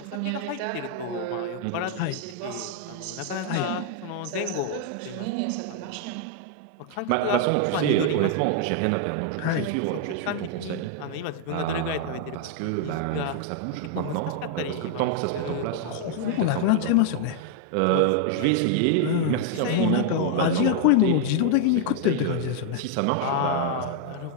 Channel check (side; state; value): both; different; correlation 0.00